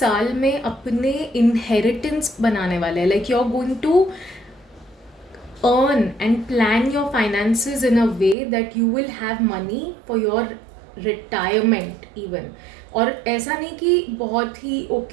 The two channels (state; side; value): drops out; left; at 8.3 s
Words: में अपने inheritance बनाने वाले हैं. Like you're going to earn and plan your finances in a way that you will have money for your retirement even. और ऐसा नहीं कि बहुत ही